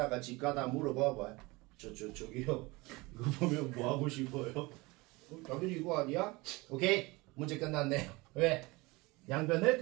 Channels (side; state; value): left; quieter; 23.4 dB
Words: 집 가다 물어봐봐. 저기요. 이거 보면 뭐 하고 싶어요? 당연히 이거 아니야? 오케이. 문제 끝났네요. 왜? 양변을